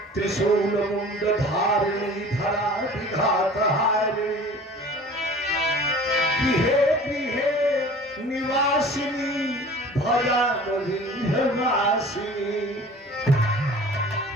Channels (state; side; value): normal; both; correlation 0.44